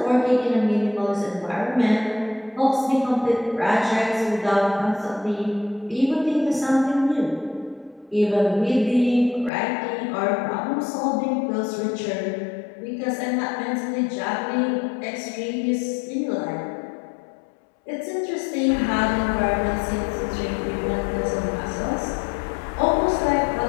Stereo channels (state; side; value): drops out; right; at 9.5 s